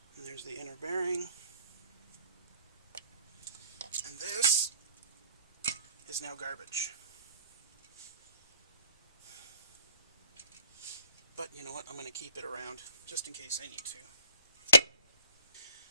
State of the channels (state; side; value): inverted; both; correlation -0.54